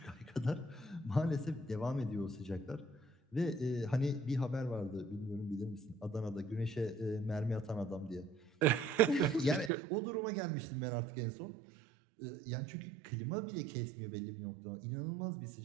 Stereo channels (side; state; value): left; drops out; at 9.7 s